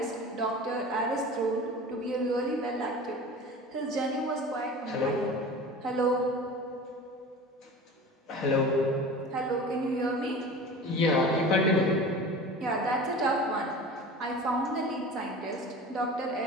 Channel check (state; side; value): normal; both; correlation 0.37